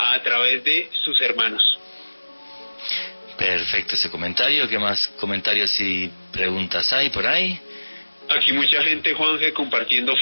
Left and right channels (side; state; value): both; inverted; correlation -1.00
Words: través de sus hermanos. Perfecto ese comentario. ¿Qué más comentarios y preguntas hay por ahí? Aquí mucha gente, Juanje, compartiendo